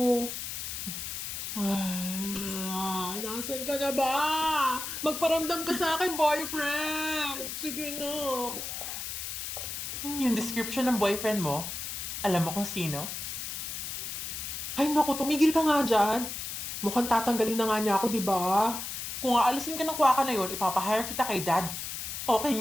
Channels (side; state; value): left; noise; hiss, 5 dB below the sound